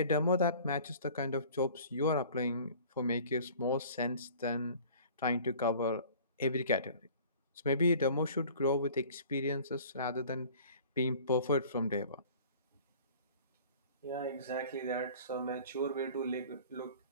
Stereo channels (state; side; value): inverted; both; correlation -0.47